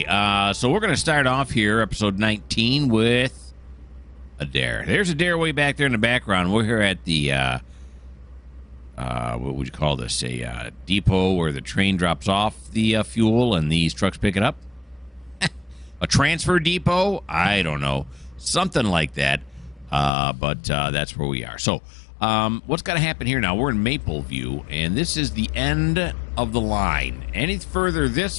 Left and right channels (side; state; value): right; drops out; at 20.1 s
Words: so we're going to start off here, episode 19, with Adair. There's Adair way back there in the background. We're here at the, what would you call this? A depot where the train drops off the fuel and these trucks pick it up. A transfer depot? I don't know. Something like that. But that's where we are. So, what's got to happen here now? We're in Mapleview, and this is the end of the line. Any further